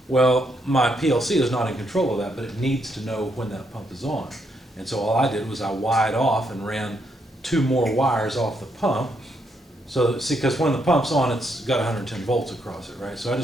Well, my PLC is not in control of that, but it needs to know when that pump is on. And so all I did was I wired off and ran 2 more wires off the pump. So, see, because when the pump's on, it's got 110 volts across it, right? So I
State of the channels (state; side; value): normal; both; correlation 0.76